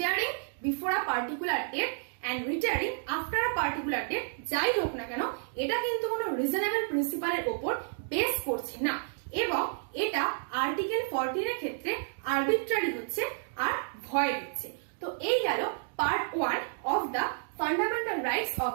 before a particular date and retiring after a particular date যাই হোক না কেন এটা কিন্তু কোনো রিজনেবল প্রিন্সিপালের উপর বেস করছে না এবং এটা আর্টিকেল 14 এর ক্ষেত্রে আরবিট্রারি হচ্ছে আর ভয়েড হচ্ছে। তো এই গেল part 1 of the fundamental rights of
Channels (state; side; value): silent; left; digital silence